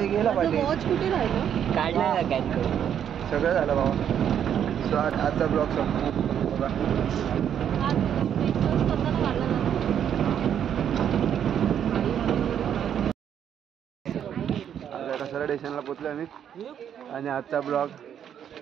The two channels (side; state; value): left; quieter; 9.1 dB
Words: गेला पाहिजे. कुठे राहिलं? काढला काय? सगळं झालं बाबा. सो आजचा ब्लॉग संपतो बघा. कसारा स्टेशनला पोचलो आम्ही आणि आजचा ब्लॉग